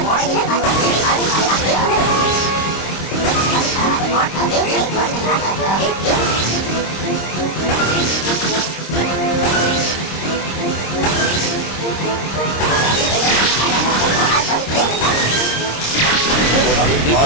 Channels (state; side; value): late; right; 26 ms